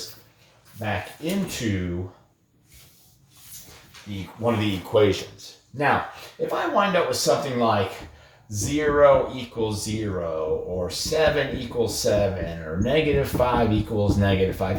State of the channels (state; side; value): identical; both; correlation 1.00